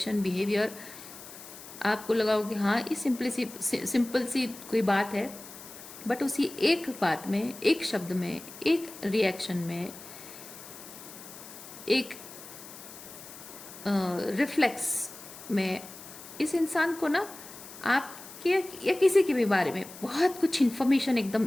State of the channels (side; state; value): left; noise; hiss, 15 dB below the sound